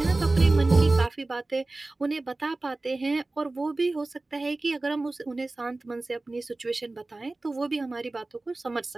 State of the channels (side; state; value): left; quieter; 3.1 dB